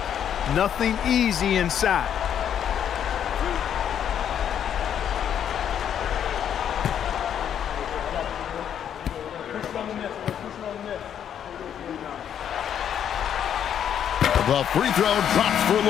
Nothing easy inside. The free throw drops for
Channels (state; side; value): quieter; right; 9.2 dB